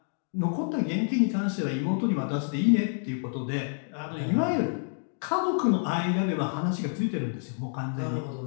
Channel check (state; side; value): silent; right; digital silence